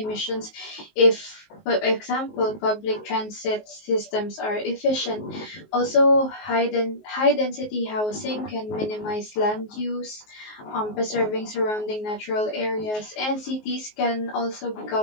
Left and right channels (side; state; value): right; late; 19 ms